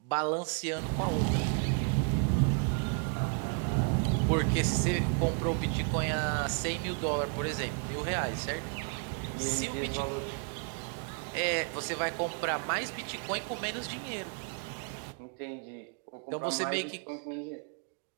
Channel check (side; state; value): left; quieter; 38.2 dB